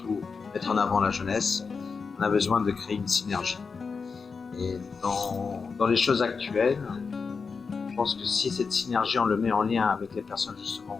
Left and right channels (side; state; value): right; quieter; 5.1 dB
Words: mettre en avant la jeunesse, on a besoin de créer une synergie. Et dans les choses actuelles, je pense que si cette synergie on le met en lien avec les personnes justement